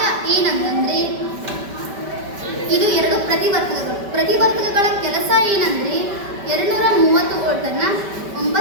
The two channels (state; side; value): late; left; 5.2 ms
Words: ಏನಂತಂದರೆ, ಇದು ಎರಡು ಪ್ರತಿವರ್ತಕಗಳ ಕೆಲಸ ಏನಂದರೆ 230 ವೋಲ್ಟನ್ನು